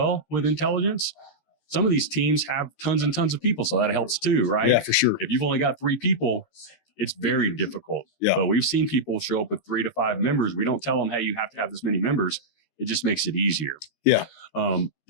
with intelligence. Some of these teams have tons and tons of people. So that helps too, right? Yeah, for sure. If you've only got 3 people, it's very difficult. Yeah. But we've seen people show up with 3 to 5 members. We don't tell them, hey, you have to have this many members. It just makes it easier. Yeah.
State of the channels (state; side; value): late; right; 13 ms